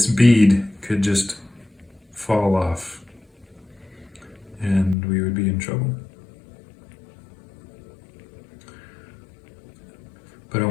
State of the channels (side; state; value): right; drops out; at 5.0 s